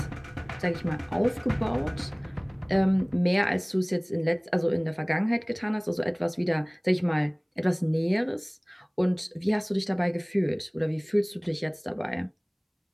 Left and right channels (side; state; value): both; identical; correlation 1.00